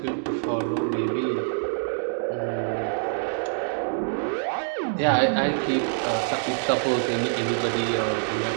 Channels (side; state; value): left; silent; digital silence